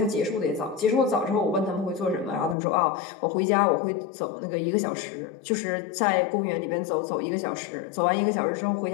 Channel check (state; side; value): drops out; right; at 2.6 s